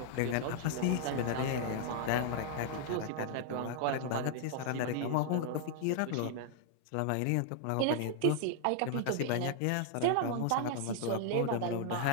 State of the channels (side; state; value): both; different; correlation -0.01